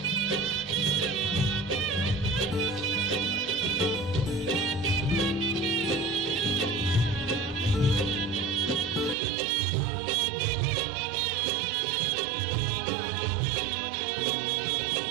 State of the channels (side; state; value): left; drops out; at 9.2 s